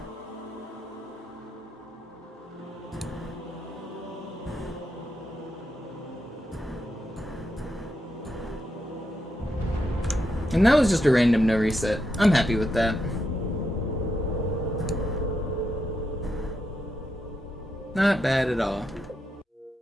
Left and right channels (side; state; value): both; normal; correlation 0.83